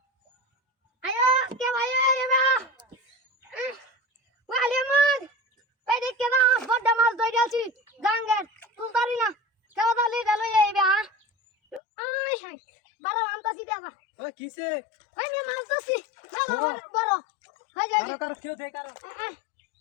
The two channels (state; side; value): drops out; right; at 11.8 s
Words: ayo, kau ayo ya mah, wah lihat. Edik ke na বড় মাছ ধরে আছি গাঙ্গের তুলতারি না কেউ তালি গেল এইবে হ্যাঁ I high বড় আনতাছি দেখা ও কিসে আমি মাছ ধরছি মেলা বড় হয়ে যায় কারো কেউ দে কারো